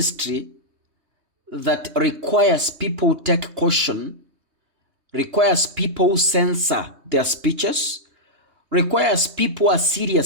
that requires people to take caution, requires people censor their speeches, requires people who are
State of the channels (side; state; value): left; late; 3.2 ms